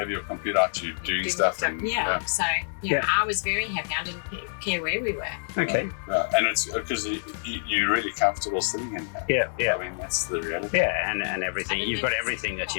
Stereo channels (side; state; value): right; silent; 60 dB below the other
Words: your computer out, you're doing stuff. And, So I was very happy. I didn't care where we were. Okay. And it's because you're really comfortable sitting in there. Yeah. I mean, that's the reality. Yeah, and everything. You've got everything that